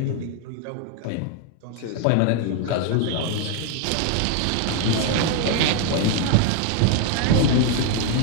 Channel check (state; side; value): different; both; correlation 0.00